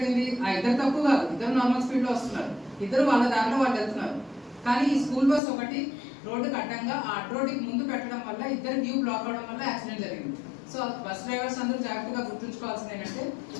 ఆ ఇద్దరు తప్పు కాదు, ఇద్దరు నార్మల్ స్పీడ్ లో వస్తున్నారు, ఇద్దరు వాళ్ళ దారిలో వాళ్ళు వెళ్తున్నారు. కానీ ఈ స్కూల్ బస్ ఒకటి రోడ్డుకి అడ్డంగా ఆ అడ్డ రోడ్డుకి ముందు పెట్టడం వల్ల ఇద్దరు వ్యూ బ్లాక్ అవడం వల్ల యాక్సిడెంట్ జరిగింది. సో బస్ డ్రైవర్స్ అందరూ జాగ్రత్తగా గుర్తుంచుకోవాల్సింది ఏంటంటే,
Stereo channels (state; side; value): drops out; right; at 5.4 s